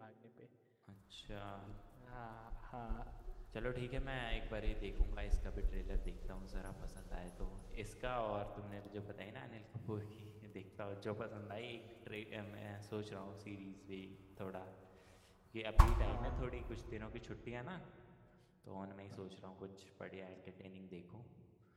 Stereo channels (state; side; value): identical; both; correlation 1.00